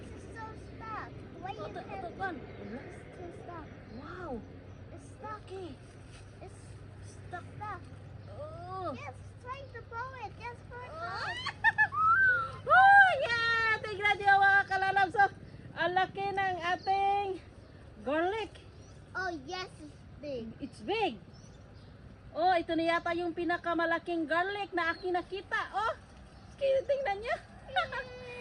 is so stuck. Wait Oh, a that minute. one. It's too stuck. Wow. It's stuck. Okay. It's stuck. Stuck. Oh. Yes, trying to blow it. Just for it. Oh, yeah! Tignan niyo mga kalalabs. So, ang laki ng ating garlic. Oh yes, it's big. It's big. Oh, ito na yata yung pinakamalaking garlic na aking nakita. Oh, tingnan niyo.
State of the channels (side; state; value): both; identical; correlation 1.00